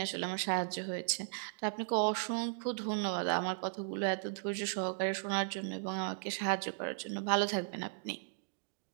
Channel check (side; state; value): left; silent; digital silence